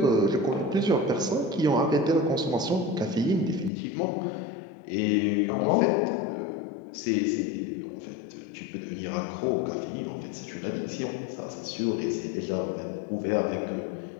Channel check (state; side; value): drops out; right; at 3.7 s